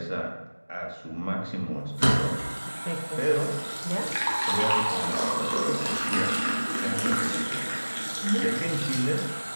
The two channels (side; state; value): both; inverted; correlation -1.00